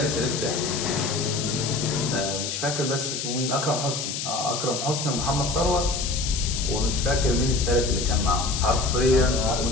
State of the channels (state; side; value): noise; left; hiss, 4 dB below the sound